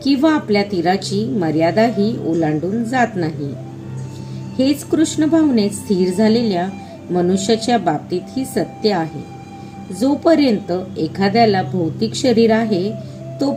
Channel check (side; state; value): both; identical; correlation 1.00